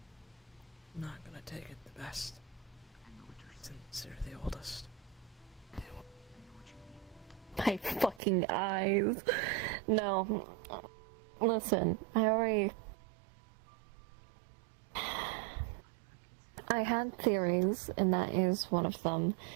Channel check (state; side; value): drops out; left; at 8.2 s